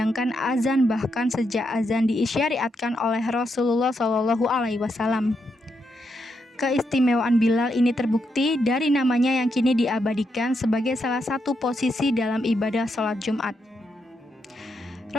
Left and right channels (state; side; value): normal; both; correlation 0.81